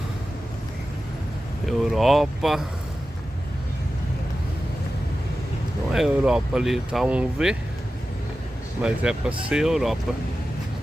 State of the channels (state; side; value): normal; both; correlation 0.93